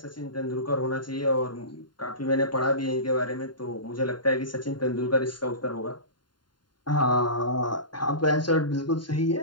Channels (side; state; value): right; late; 0.71 ms